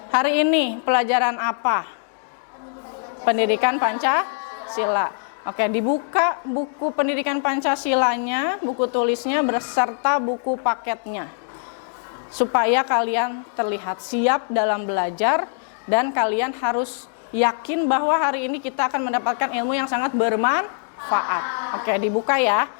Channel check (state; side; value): silent; right; digital silence